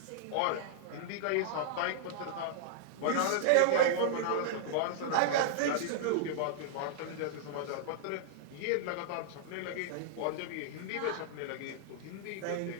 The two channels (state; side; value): different; both; correlation -0.01